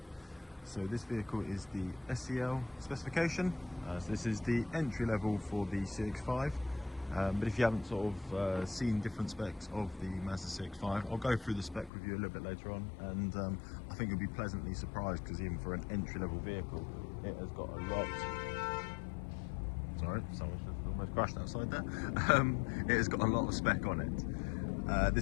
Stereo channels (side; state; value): right; drops out; at 11.9 s